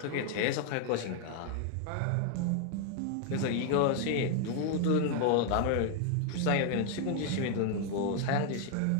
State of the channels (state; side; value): different; both; correlation 0.00